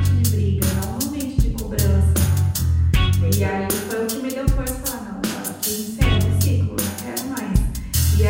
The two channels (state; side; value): identical; both; correlation 1.00